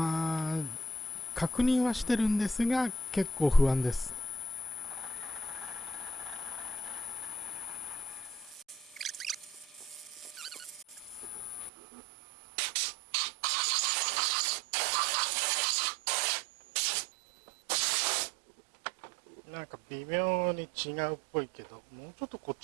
確認はしてるんですが結構不安です。なんか微妙に違うっぽいけど、もうちょっとこっ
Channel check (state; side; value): drops out; left; at 11.7 s